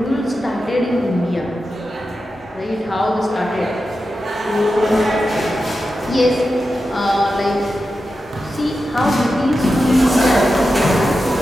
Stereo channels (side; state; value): both; normal; correlation 0.90